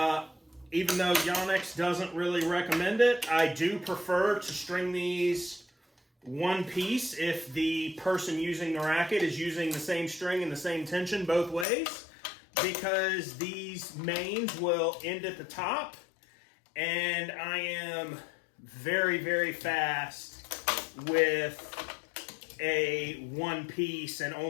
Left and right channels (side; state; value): right; drops out; at 11.7 s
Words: Even though Yonex doesn't really recommend it, I do prefer to string these one piece if the person using the racket is using the same string and the same tension both ways, because these mains will end at the top, and I am very fast with a one piece and